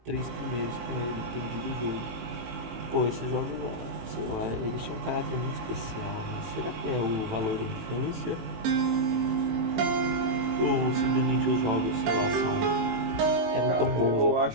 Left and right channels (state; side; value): late; left; 18 ms